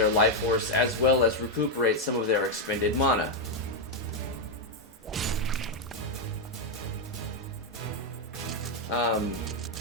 life force as well as recuperate some of their expended mana.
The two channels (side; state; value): both; normal; correlation 0.02